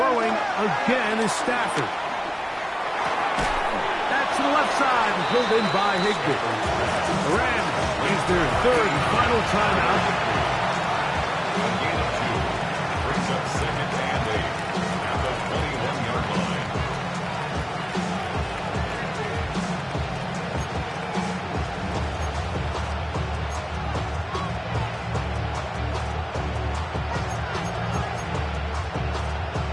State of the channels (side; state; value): both; identical; correlation 1.00